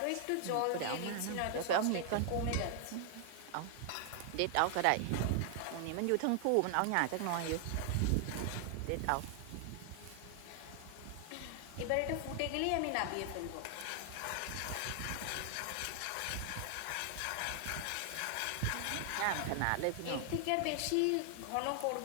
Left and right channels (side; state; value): both; different; correlation 0.00